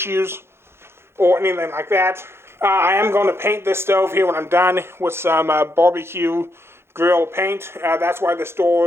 or anything like that. I am going to paint this stove here when I'm done with some barbecue grill paint. That's why this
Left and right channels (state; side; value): late; left; 0.12 ms